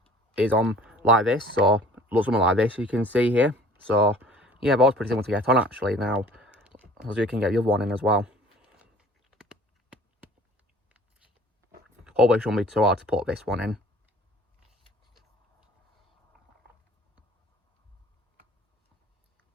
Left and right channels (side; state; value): both; normal; correlation 0.49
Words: is on like this. So looks something like this, you can see here. So yeah, that was pretty simple to get on actually. Now, as you can get the other one in as well. Hopefully it shouldn't be too hard to put this one in.